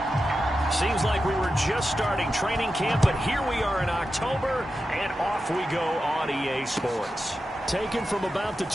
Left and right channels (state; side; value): normal; both; correlation 0.91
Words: Seems like we were just starting training camp, but here we are in October, and off we go on EA Sports. Taken from about the